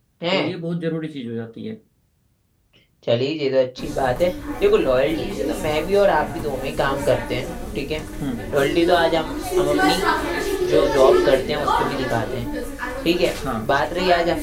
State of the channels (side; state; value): both; identical; correlation 1.00